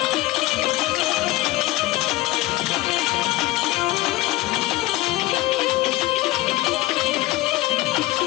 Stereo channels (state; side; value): quieter; right; 18.8 dB